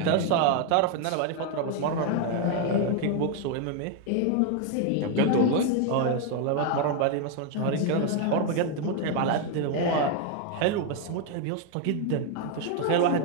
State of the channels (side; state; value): both; different; correlation 0.01